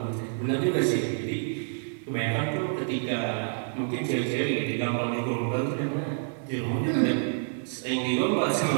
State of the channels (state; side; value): silent; left; digital silence